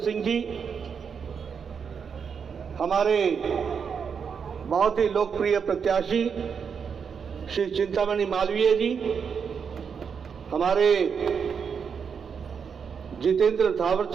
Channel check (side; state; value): left; quieter; 6.5 dB